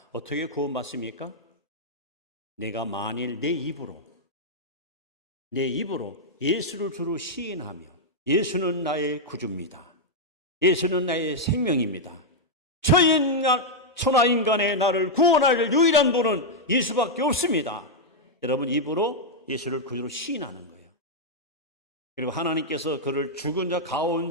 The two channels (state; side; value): normal; both; correlation -0.03